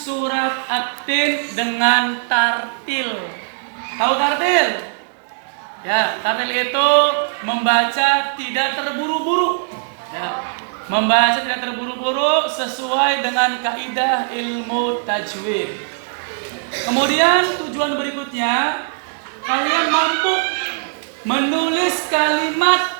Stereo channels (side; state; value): left; silent; digital silence